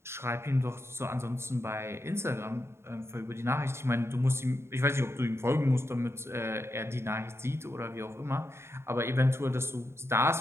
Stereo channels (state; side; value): late; left; 0.12 ms